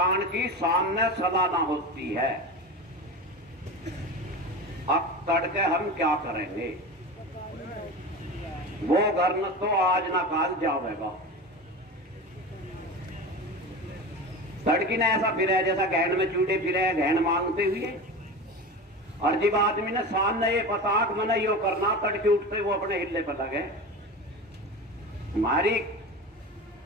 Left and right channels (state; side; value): normal; both; correlation 0.28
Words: की सामने सालाना होती है, अब तड़के हम क्या करेंगे। वो घर न तो आज ना काल जावेगा। सड़की ने ऐसा फिर जैसा गहन में चूड़े फिरे गहन मांगते हुए। और जब आदमी ने शान ने ये पता कि मैंने यो करना, तड़के उठते वो अपने हिल्ले पर लगे। हमारी